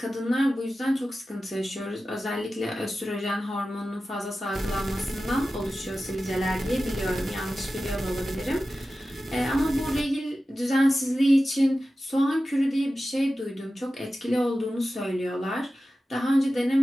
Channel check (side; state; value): both; normal; correlation 0.94